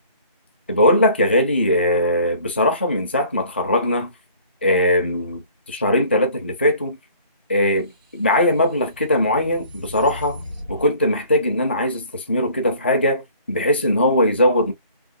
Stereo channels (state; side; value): inverted; both; correlation -0.52